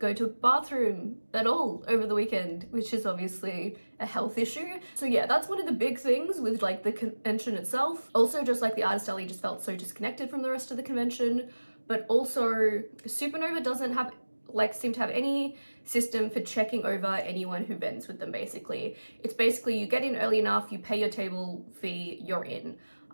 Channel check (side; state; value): both; inverted; correlation -1.00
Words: to a bathroom at all over the weekend, which is obviously a health issue. So yeah, that's one of the big things with like the convention itself. Also, just like the Artist Alley just felt so disconnected from the rest of the convention, but also Supanova doesn't have seem to have any system for checking over anyone who vends with them. Basically, it's basically you get in early enough, you pay your table fee, you're in.